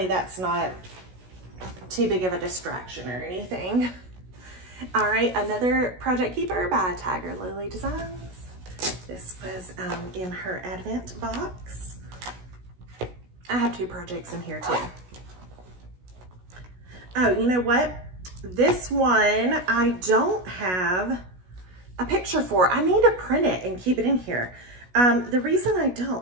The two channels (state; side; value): late; left; 16 ms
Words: that's not too big of a distraction or anything. All right, another Project Keeper by Tiger Lily Designs. This was in her Advent box. I have 2 projects in here too. Oh, you know what? This one I don't have a picture for. I need to print it and keep it in here. The reason I